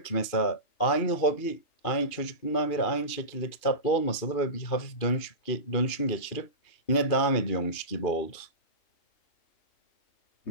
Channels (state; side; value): late; right; 2.5 ms